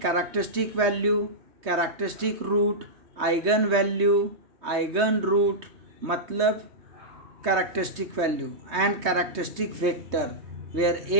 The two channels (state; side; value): late; left; 3.2 ms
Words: characteristic value, characteristic root, eigen value, eigen root मतलब characteristic value and characteristic vector where